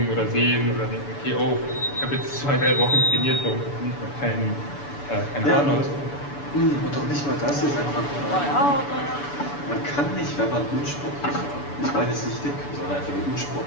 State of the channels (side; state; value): right; late; 6.9 ms